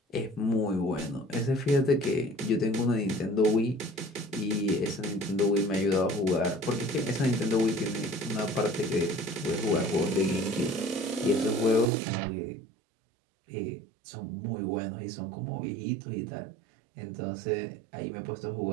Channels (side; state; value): left; drops out; at 11.9 s